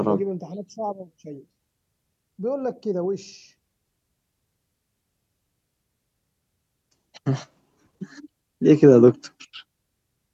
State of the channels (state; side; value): identical; both; correlation 1.00